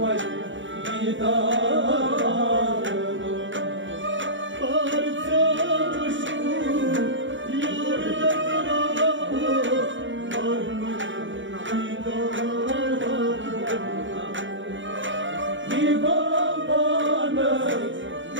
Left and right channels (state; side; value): late; left; 0.55 ms